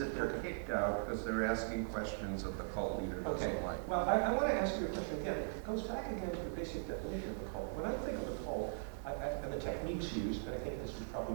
they're kicked out because they're asking questions that the cult leader doesn't like. Well, I want to ask you a question again. It goes back again to the basic definition of the cult. When I think of the cult, and the techniques used, and I think this is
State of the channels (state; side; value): silent; left; digital silence